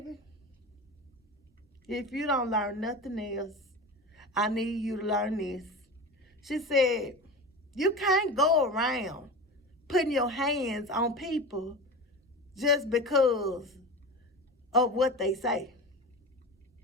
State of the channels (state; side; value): normal; both; correlation 0.29